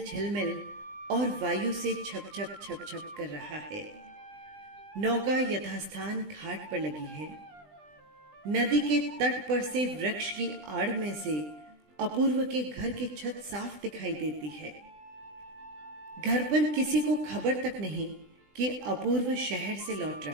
झिलमिल और वायु से छप छप छप छप कर रहा है। नौका यथास्थान घाट पर लगी है। नदी के तट पर से वृक्ष की आड़ में से अपूर्व के घर की छत साफ दिखाई देती है। घर पर किसी को खबर तक नहीं कि अपूर्व शहर से लौट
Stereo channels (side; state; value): left; late; 20 ms